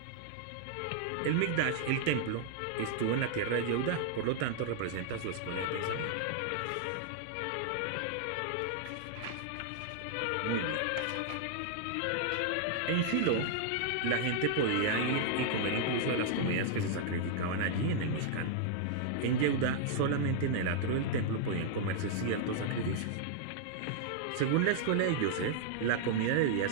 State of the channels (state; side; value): different; both; correlation -0.01